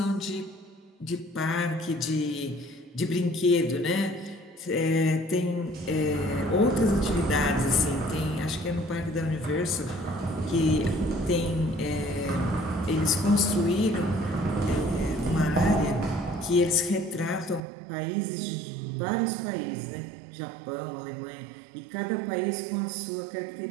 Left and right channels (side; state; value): left; drops out; at 17.6 s